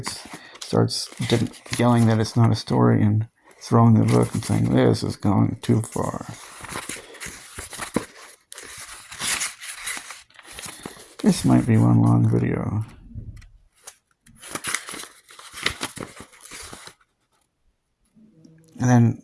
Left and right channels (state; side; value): identical; both; correlation 1.00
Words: starts yelling that it's not a story and throwing the book and saying, "This is going too far." This might be one long video. And then